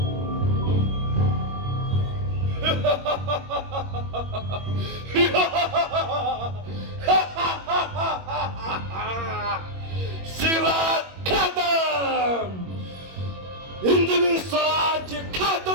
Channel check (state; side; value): late; left; 21 ms